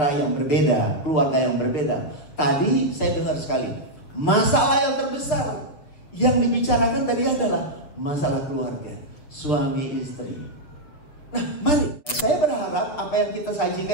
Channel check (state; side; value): late; right; 7.1 ms